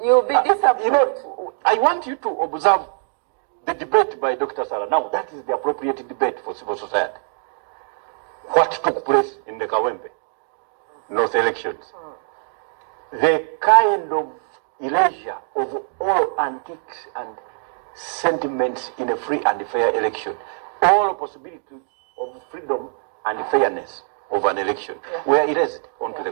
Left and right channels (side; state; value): left; silent; digital silence